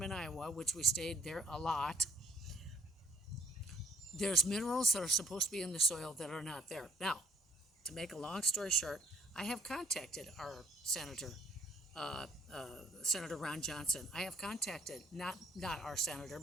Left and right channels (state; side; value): normal; both; correlation 0.62